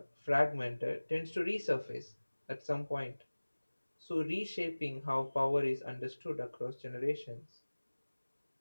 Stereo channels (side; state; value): both; inverted; correlation -1.00